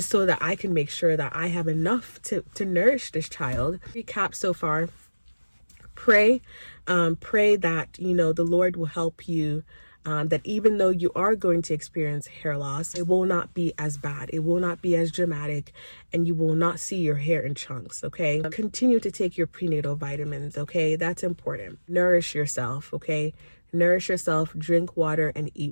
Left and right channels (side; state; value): both; inverted; correlation -1.00